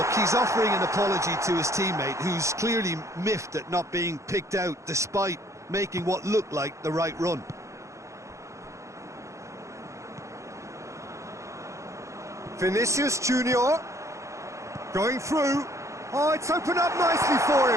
he's offering an apology to his teammate, who's clearly miffed at not being picked out despite making what looked like the right run. Vinicius Junior going through. Oh, it's opened up nicely for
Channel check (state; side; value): late; left; 0.15 ms